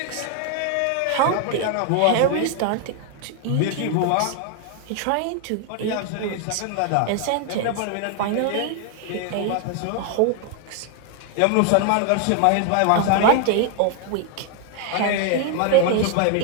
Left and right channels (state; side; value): different; both; correlation 0.00